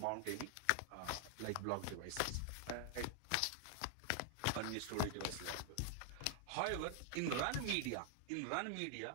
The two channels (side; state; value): both; different; correlation 0.00